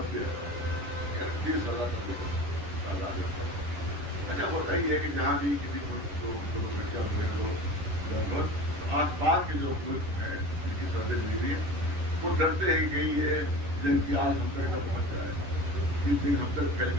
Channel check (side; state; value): left; late; 11 ms